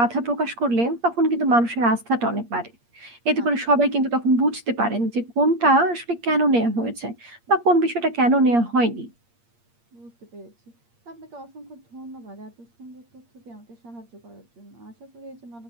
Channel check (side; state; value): left; late; 8.6 ms